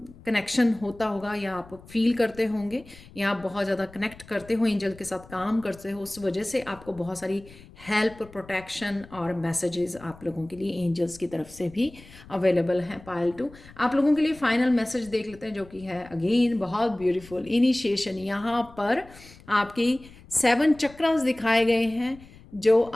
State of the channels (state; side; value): noise; left; rumble, 21 dB below the sound